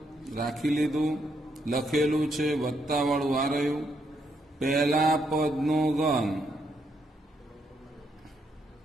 રાખી લીધું, લખેલું છે, વત્તા વાળું આ રહ્યું. પહેલા પદનો ઘન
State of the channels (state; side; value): normal; both; correlation 0.76